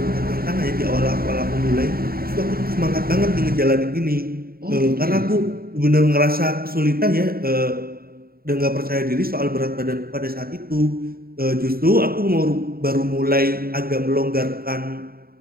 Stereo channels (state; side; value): late; left; 0.43 ms